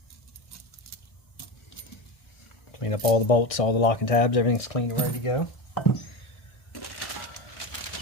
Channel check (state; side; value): late; right; 1.6 ms